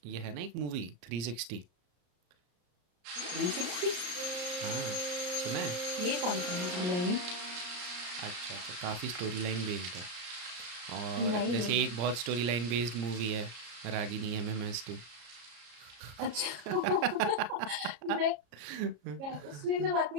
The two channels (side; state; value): left; late; 34 ms